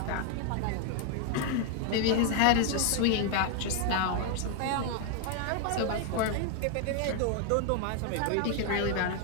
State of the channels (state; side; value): different; both; correlation 0.00